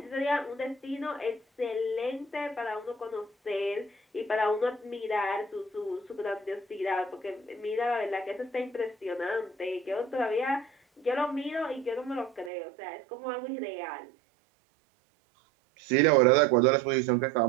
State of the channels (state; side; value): drops out; left; at 12.5 s